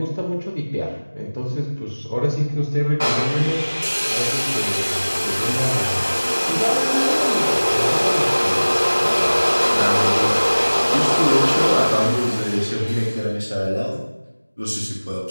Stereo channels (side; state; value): both; inverted; correlation -1.00